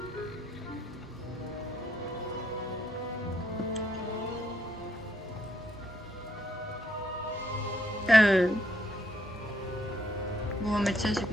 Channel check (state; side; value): normal; both; correlation 0.73